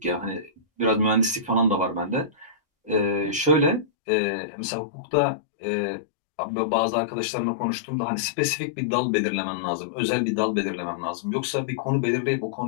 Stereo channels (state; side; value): drops out; right; at 3.9 s